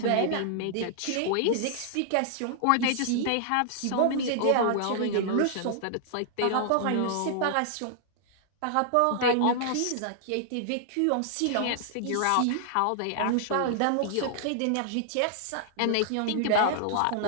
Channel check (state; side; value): different; both; correlation -0.01